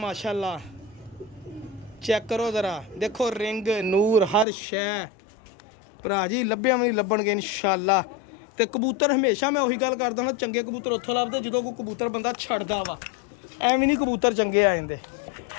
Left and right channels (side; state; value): right; drops out; at 4.5 s